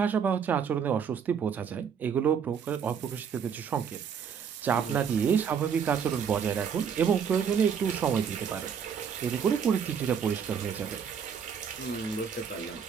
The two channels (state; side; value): quieter; left; 7.2 dB